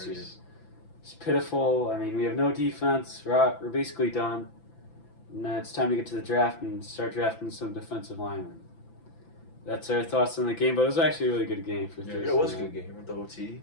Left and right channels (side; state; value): right; late; 5.9 ms